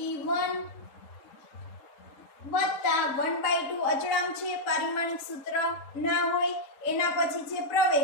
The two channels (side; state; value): right; late; 3.8 ms